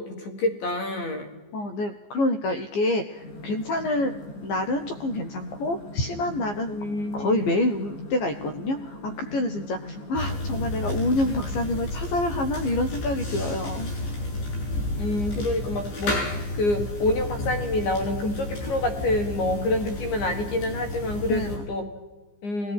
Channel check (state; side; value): late; right; 15 ms